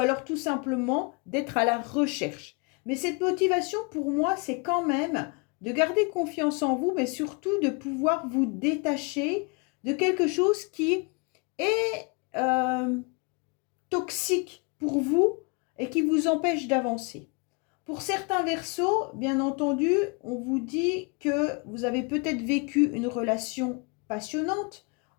tout simplement d'être à la recherche. Mais cette motivation, pour moi, c'est quand même de garder confiance en vous, mais surtout de pouvoir vous détacher de quelque chose qui est toxique pour vous et qui vous empêche d'avancer. Pour certains Verseaux, bien entendu, on vous dit que vous avez peut-être vécu une relation passionnante,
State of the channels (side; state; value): right; quieter; 31.6 dB